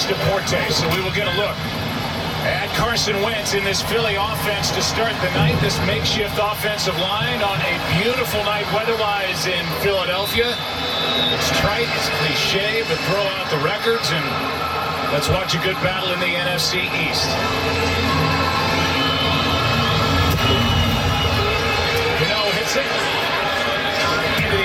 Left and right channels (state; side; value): identical; both; correlation 1.00